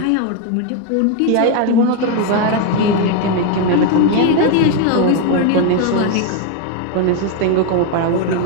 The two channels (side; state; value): both; different; correlation 0.01